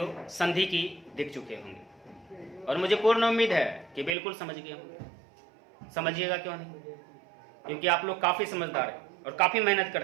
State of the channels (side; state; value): left; drops out; at 4.2 s